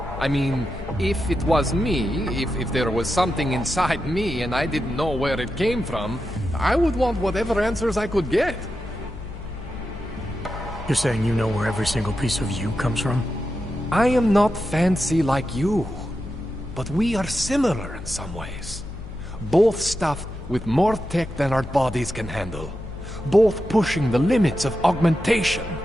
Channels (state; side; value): noise; left; hum, 11 dB below the sound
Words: I mean, if it was me, if there was something inside me and I didn't know where it came from, I would want whatever answers I could get. You're saying you know where every single piece of you comes from? I am not fancy like you, but we are similar in some ways. Both stuffed with more tech than our bodies can handle. Both pushing the limits of augmentation.